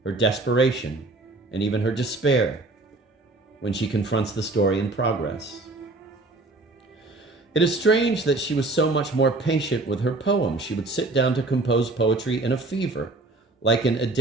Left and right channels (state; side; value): quieter; left; 3.1 dB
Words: her desperation, and even her despair when she confronts the story in progress. It is strange that she was so much more patient with her poems. She would sit down to compose poetry in a fever, like an